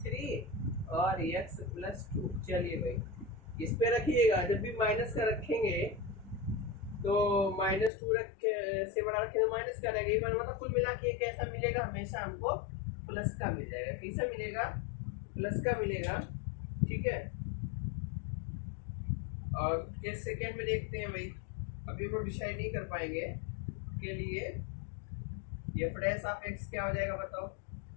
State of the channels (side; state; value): right; drops out; at 7.9 s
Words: थ्री और एक्स प्लस टू। चलिए भाई इस पे रखिएगा, जब भी माइनस का रखेंगे तो माइनस टू से बड़ा रखें तो माइनस का रहेगा, ये मतलब कुल मिला के कैसा मिलेगा, हमेशा हमको प्लस का मिल जाएगा। कैसा मिलेगा, प्लस का मिलेगा। ठीक है, और केस सेकेंड में देखते हैं भाई, अभी हम डिसाइड नहीं कर पाएंगे के लिए एफ डैश ऑफ एक्स क्या हो जाएगा बताओ,